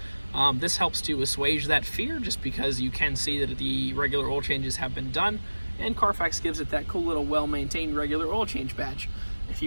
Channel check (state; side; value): inverted; both; correlation -1.00